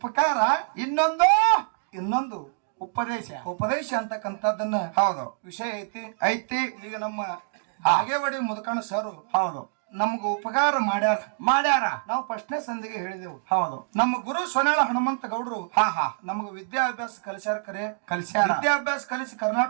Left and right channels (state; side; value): silent; left; digital silence